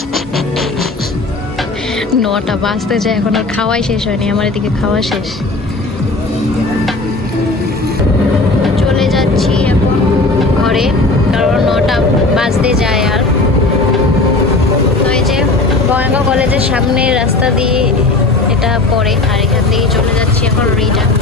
9টা বাজতে যায়, এখন আর খাওয়াই শেষ হয়নি, আমার এদিকে খাওয়া শেষ। চলে যাচ্ছি এখন ঘরে, কারণ 9টা বাজতে যায়। আর তো এই যে বঙ্গাইগাঁও কলেজের সামনে রাস্তা দিয়ে এটা পড়ে, আর এখান থেকে চলে যাচ্ছি এখন রিটার্ন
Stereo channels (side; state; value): right; quieter; 3.1 dB